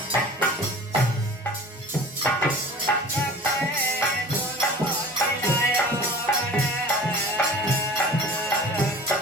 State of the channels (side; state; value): both; normal; correlation 0.41